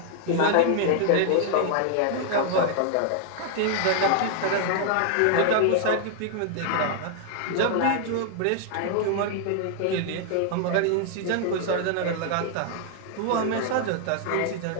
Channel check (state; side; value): different; both; correlation 0.00